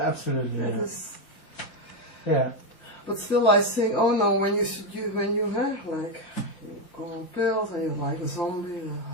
It Yeah. is, Yeah. but still, I think, oh no, when you have like you go on pills and you're like a zombie.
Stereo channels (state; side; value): late; right; 5.7 ms